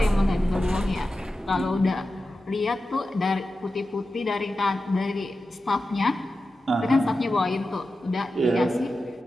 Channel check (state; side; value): normal; both; correlation 0.92